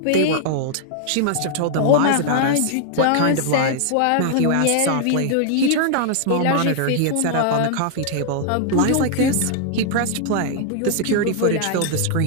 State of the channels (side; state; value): both; different; correlation 0.00